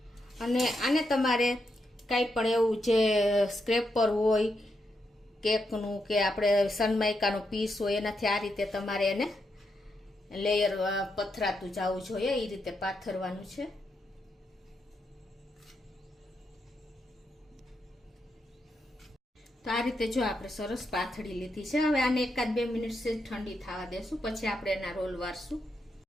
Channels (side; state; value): both; normal; correlation 0.82